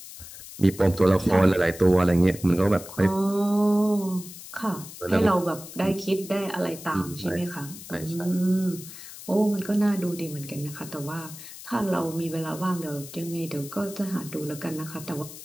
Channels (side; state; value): left; noise; hiss, 14 dB below the sound